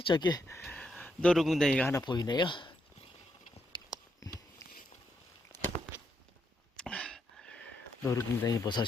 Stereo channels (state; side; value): normal; both; correlation 0.80